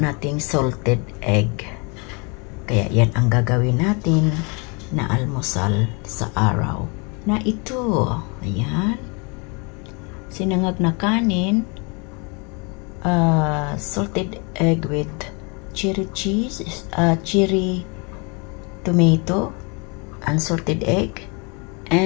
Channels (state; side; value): quieter; right; 32.3 dB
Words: salted egg. Kaya yan ang gagawin natin na almusal sa araw na ito. Ayan. Sinangag na kanin, salted egg with cherry cheese, cherry tomato, unsalted egg,